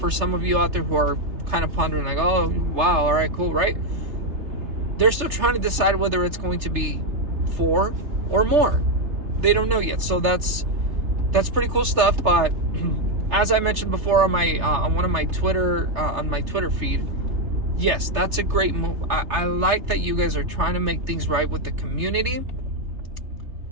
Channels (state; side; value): late; left; 3.3 ms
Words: some of you out there who are kind of pondering like, oh wow, all right, cool, right? They're still trying to decide whether it's going to be 4 or more. They don't know yet. So that's pretty cool stuff. But as I mentioned before on my on my Twitter feed, yes, that's a great move. I like that you guys are trying to make things right with the community.